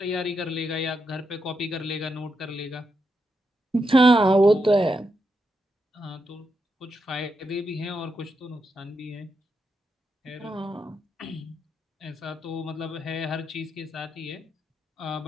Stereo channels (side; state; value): both; normal; correlation 0.83